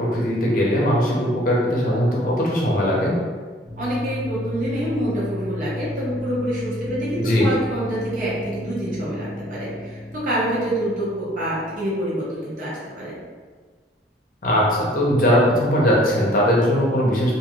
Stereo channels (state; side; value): normal; both; correlation 0.55